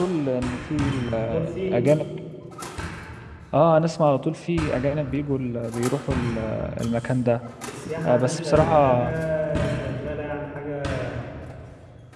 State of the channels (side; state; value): both; identical; correlation 1.00